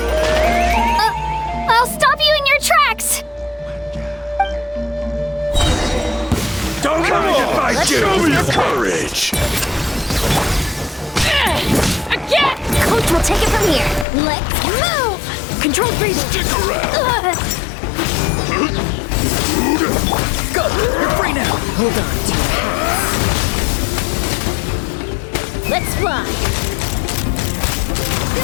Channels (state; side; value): drops out; right; at 14.1 s